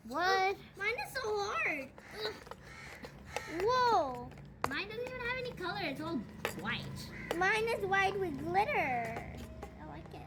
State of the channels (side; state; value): both; identical; correlation 1.00